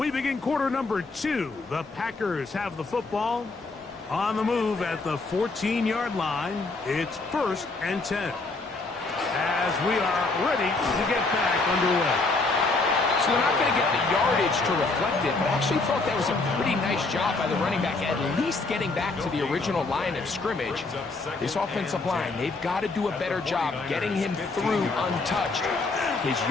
begin quarter number 2. The Packers have the football on the move at the 14-yard line. It's 1st and 10 as we are ready to get back underway. So they're not going to get the yardage to reflect it, but I actually thought that was a pretty nice job by the running back, at least getting back to the original line of scrimmage. This offensive line, they've got to do a better job getting him through untouched. His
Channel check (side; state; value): right; quieter; 3.6 dB